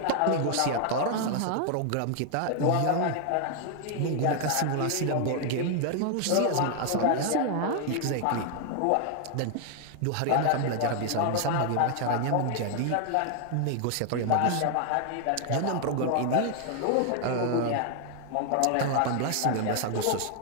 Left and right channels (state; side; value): different; both; correlation 0.00